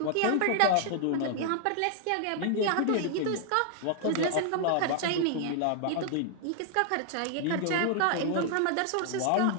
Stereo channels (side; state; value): both; different; correlation 0.00